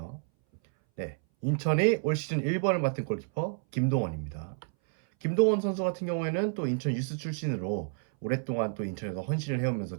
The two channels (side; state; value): left; silent; 58 dB below the other